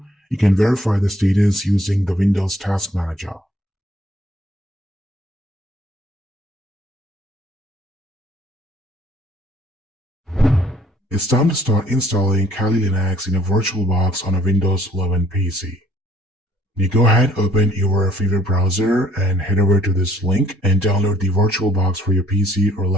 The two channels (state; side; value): normal; both; correlation 0.61